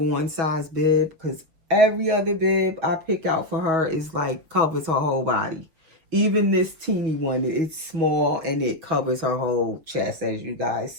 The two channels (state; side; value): late; left; 6.6 ms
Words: size bib, because every other bib I pick out for her is like covers her whole body. Even this teeny one, it's small and it covers her whole chest, as you guys